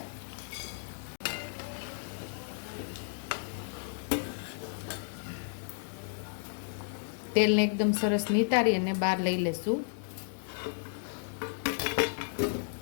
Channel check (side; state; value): right; silent; digital silence